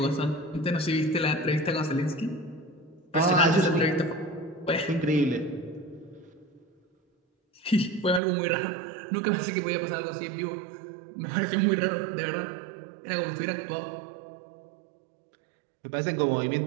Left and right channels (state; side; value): drops out; left; at 8.2 s